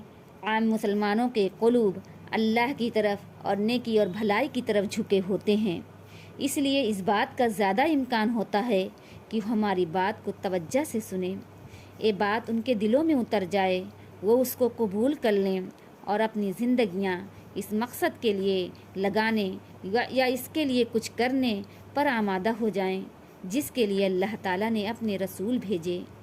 عام مسلمانوں کے قلوب اللہ کی طرف اور نیکی اور بھلائی کی طرف جھکے ہوتے ہیں، اس لیے اس بات کا زیادہ امکان ہوتا ہے کہ ہماری بات کو توجہ سے سنیں، یہ بات ان کے دلوں میں اتر جائے، وہ اس کو قبول کر لیں اور اپنی زندگیاں اس مقصد کے لیے لگانے یا اس کے لیے کچھ کرنے پر آمادہ ہو جائیں جس کے لیے اللہ تعالیٰ نے اپنے رسول بھیجے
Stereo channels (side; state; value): both; identical; correlation 1.00